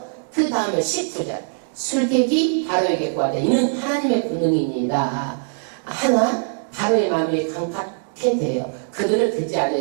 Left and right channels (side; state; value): left; silent; digital silence